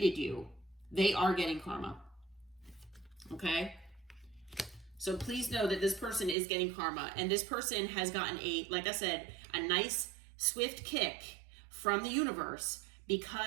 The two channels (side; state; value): left; drops out; at 6.4 s